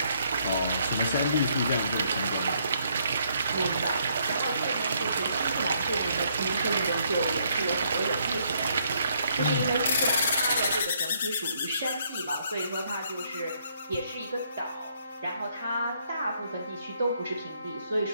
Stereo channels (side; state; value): both; inverted; correlation -0.70